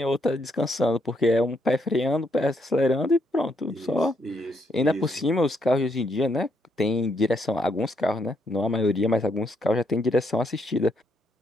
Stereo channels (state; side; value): normal; both; correlation 0.75